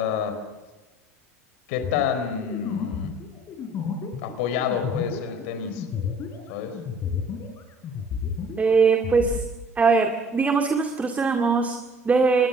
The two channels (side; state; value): both; normal; correlation 0.54